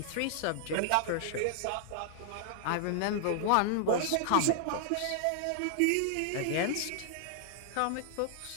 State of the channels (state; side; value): different; both; correlation -0.01